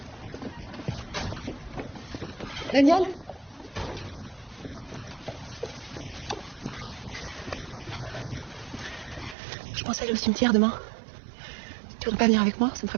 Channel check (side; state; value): left; drops out; at 9.3 s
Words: Daniel? Je pense aller au cimetière demain. Tu voudrais pas venir avec moi? Ça me ferait